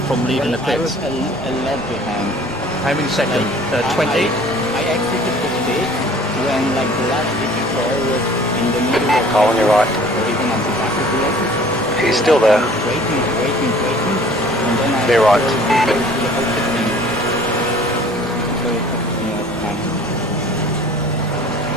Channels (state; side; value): normal; both; correlation 0.50